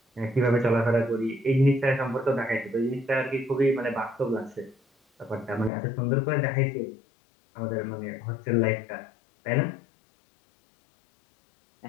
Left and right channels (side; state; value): right; drops out; at 5.7 s